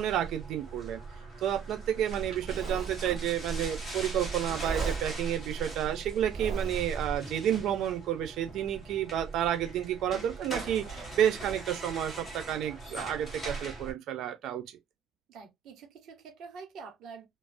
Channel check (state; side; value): quieter; left; 8.6 dB